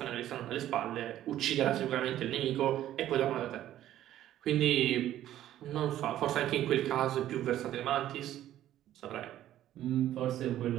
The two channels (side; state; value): left; quieter; 12.6 dB